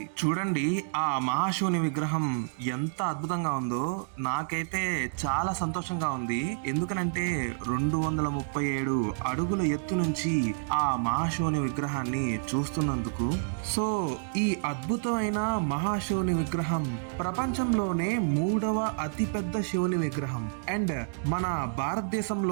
చూడండి ఆ మహాశివుని విగ్రహం ఎంత అద్భుతంగా ఉందో. నాకైతే చాలా సంతోషంగా ఉంది. ఎందుకనంటే 237 అడుగుల ఎత్తు నుంచి ఆ మహాశివుని విగ్రహాన్ని చూస్తున్నందుకు. సో ఈ అద్భుతమైన మహాశివుని విగ్రహం ప్రపంచంలోనే మూడవ అతిపెద్ద శివుని విగ్రహం అండ్ మన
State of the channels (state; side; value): silent; left; digital silence